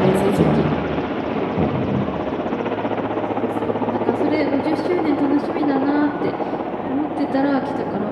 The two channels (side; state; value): both; identical; correlation 1.00